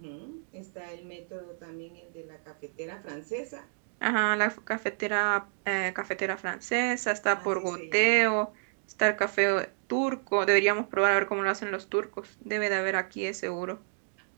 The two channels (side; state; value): left; silent; digital silence